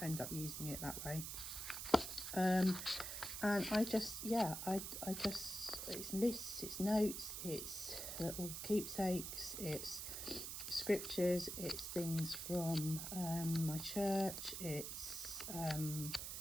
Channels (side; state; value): right; noise; hiss, 5 dB below the sound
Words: end up using it that way. And I just, yeah, I just, it's lists, it's notes, it's little keepsakes, it's scriptures, it's things from my church, it's